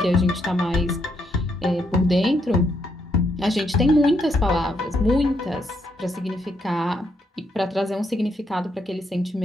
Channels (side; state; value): both; normal; correlation 0.77